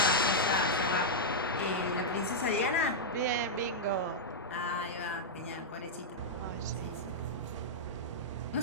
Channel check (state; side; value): normal; both; correlation -0.05